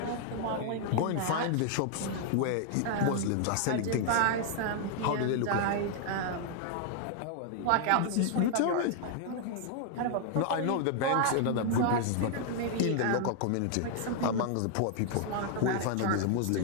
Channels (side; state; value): both; different; correlation 0.00